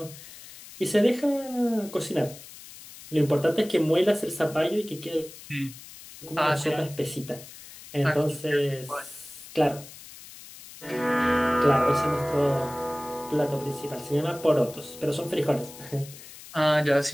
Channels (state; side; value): noise; left; hiss, 17 dB below the sound